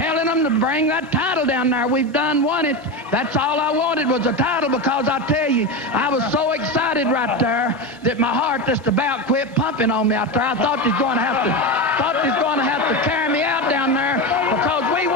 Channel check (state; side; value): normal; both; correlation 0.18